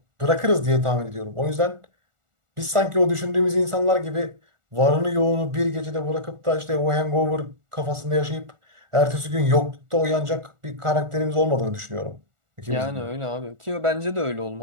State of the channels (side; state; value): left; late; 1.4 ms